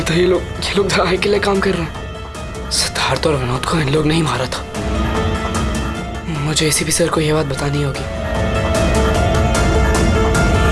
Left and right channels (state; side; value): identical; both; correlation 1.00